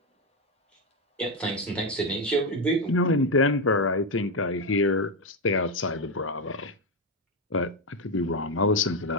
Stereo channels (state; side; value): normal; both; correlation 0.08